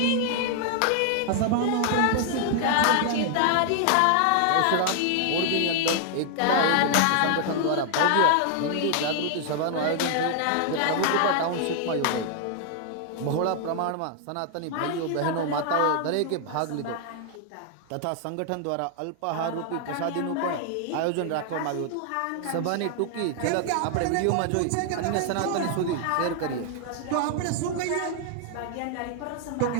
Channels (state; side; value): different; both; correlation 0.00